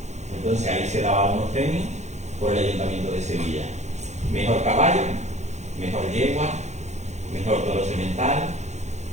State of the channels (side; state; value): left; late; 0.33 ms